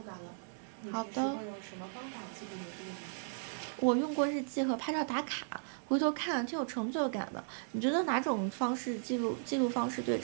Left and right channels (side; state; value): left; silent; digital silence